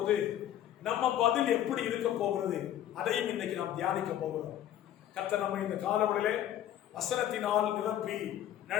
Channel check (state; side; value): quieter; right; 11.7 dB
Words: நம்ம பதில் எப்படி இருக்க போகிறது அதையும் இன்னைக்கு நாம் தியானிக்க போகிறோம். கர்த்தர் நம்ம இந்த காலவெளியிலே வசனத்தினால் நிரப்பி